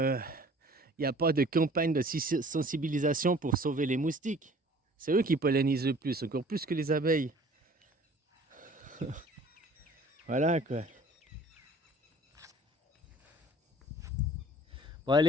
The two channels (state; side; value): normal; both; correlation 0.51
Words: n'y a pas de campagne de sensibilisation pour sauver les moustiques. C'est eux qui pollinisent le plus, encore plus que les abeilles. Voilà quoi. Bon